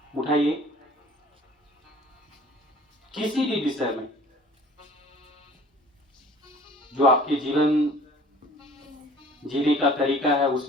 उठाइए। किसी भी विषय में जो आपके जीवन जीने का तरीका है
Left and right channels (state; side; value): normal; both; correlation 0.50